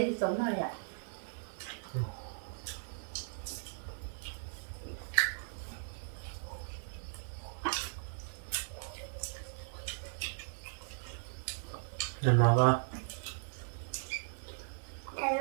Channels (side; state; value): left; silent; digital silence